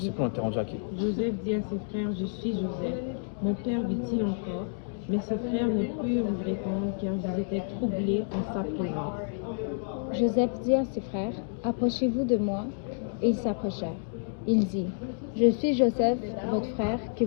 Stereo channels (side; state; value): right; silent; digital silence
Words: plus, on était rendu à qui. Joseph dit à ses frères, je suis Joseph. Mon père vit-il encore? Mais ses frères ne purent lui répondre car ils étaient troublés en sa présence. Joseph dit à ses frères, approchez-vous de moi. Et ils s'approchèrent. Il dit, je suis Joseph, votre frère, que